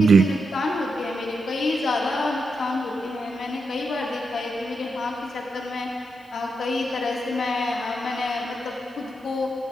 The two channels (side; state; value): both; normal; correlation 0.85